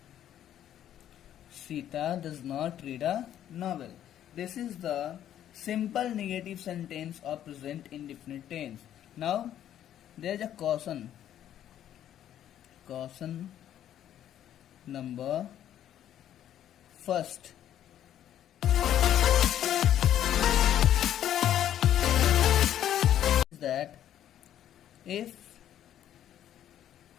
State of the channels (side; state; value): right; quieter; 11.0 dB